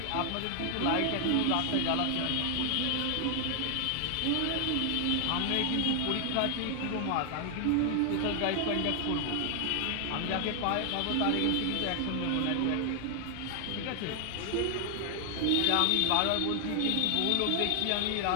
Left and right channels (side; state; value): both; different; correlation 0.00